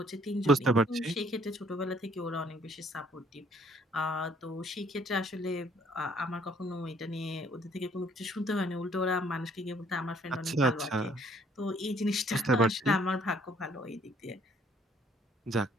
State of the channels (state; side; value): normal; both; correlation 0.63